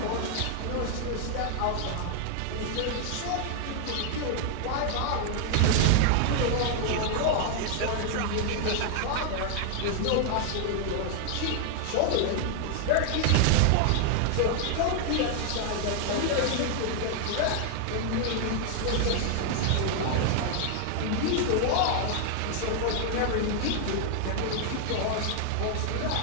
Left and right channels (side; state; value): both; different; correlation 0.00